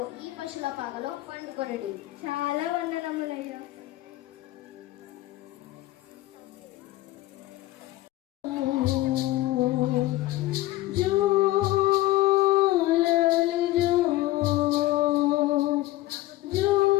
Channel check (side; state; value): right; quieter; 17.0 dB